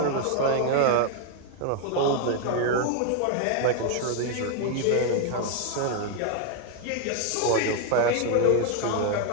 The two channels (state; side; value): different; both; correlation 0.01